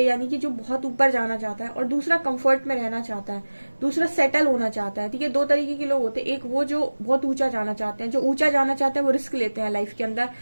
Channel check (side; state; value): both; inverted; correlation -1.00